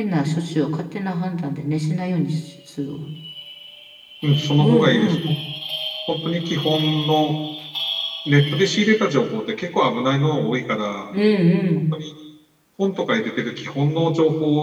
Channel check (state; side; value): identical; both; correlation 1.00